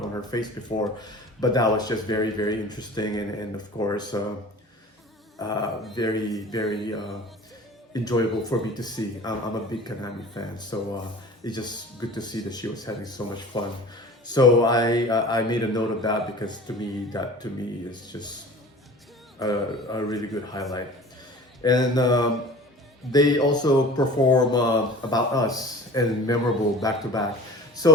her face before, but that was just very, very interesting, and of course very, very enjoyable for me to see. I'm a big Kanami fan, so it's just good to see that she was having so much fun. So I made a note of that, because to me is just a really good highlight. And they also perform About Us and Memorable back to back.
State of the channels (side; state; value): both; normal; correlation 0.41